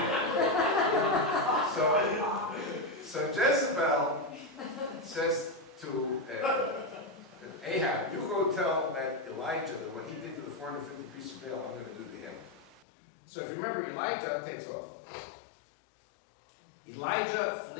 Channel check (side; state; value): right; drops out; at 12.9 s